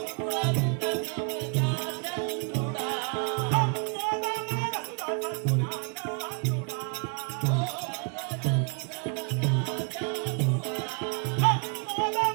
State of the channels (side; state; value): left; quieter; 36.9 dB